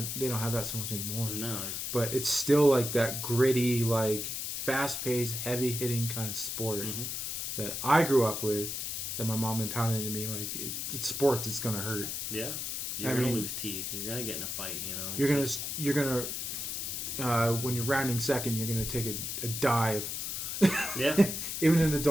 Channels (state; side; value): noise; left; hiss, 3 dB below the sound